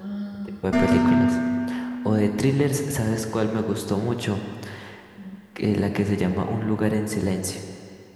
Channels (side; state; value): both; identical; correlation 1.00